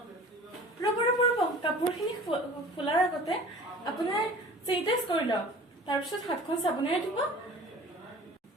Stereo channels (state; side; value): normal; both; correlation 0.43